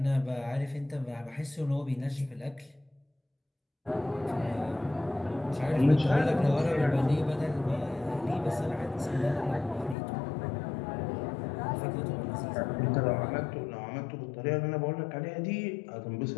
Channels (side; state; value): right; drops out; at 10.0 s